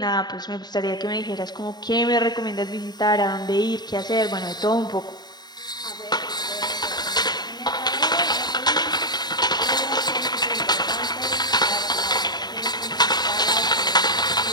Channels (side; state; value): right; late; 0.20 ms